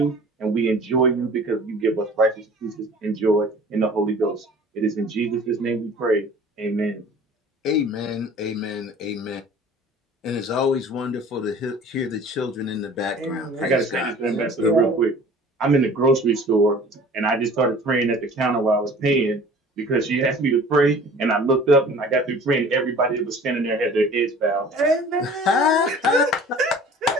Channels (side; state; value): both; normal; correlation 0.46